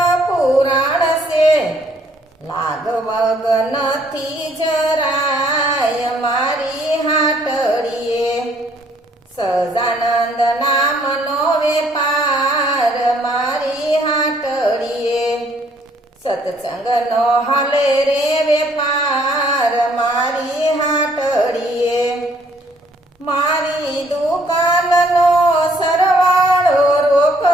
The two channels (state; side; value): normal; both; correlation 0.64